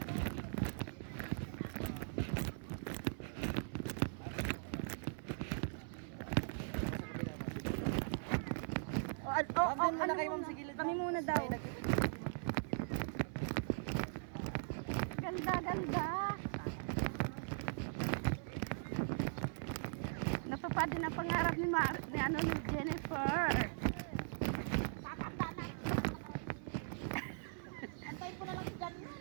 Andun muna kayo ma'am sa gilid. Kami muna daw. Ganda, ganda. Natupad din ang pangarap ni ni Jennifer. Antayin ko na lang si Jan.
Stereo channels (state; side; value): silent; left; 51 dB below the other